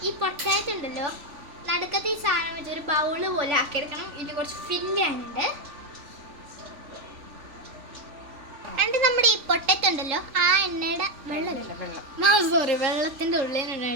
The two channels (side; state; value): left; late; 3.5 ms